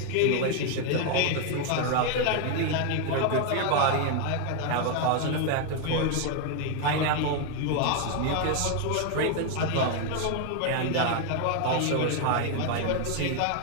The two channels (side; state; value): both; different; correlation 0.00